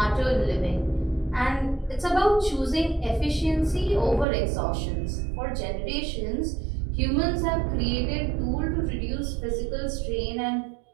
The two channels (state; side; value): drops out; left; at 4.2 s